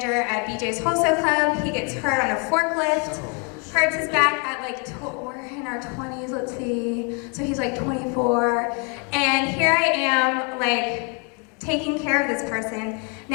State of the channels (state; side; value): quieter; right; 35.5 dB